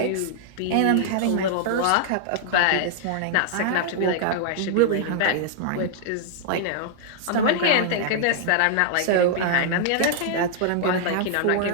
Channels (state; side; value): different; both; correlation -0.01